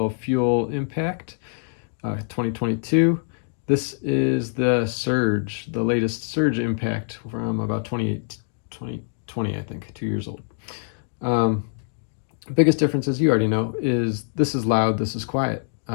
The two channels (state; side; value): silent; right; digital silence